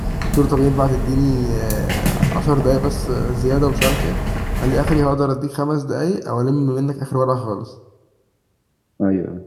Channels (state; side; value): identical; both; correlation 1.00